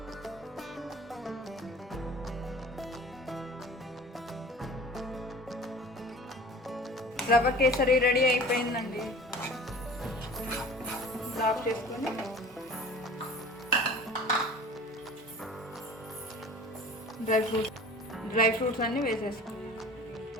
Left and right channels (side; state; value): both; normal; correlation 0.42